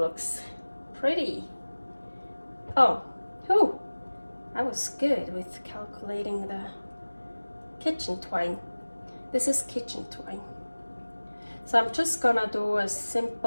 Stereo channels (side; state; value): both; inverted; correlation -1.00